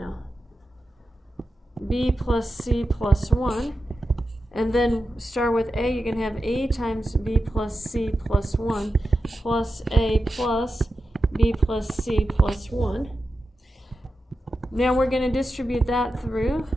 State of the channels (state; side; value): normal; both; correlation 0.91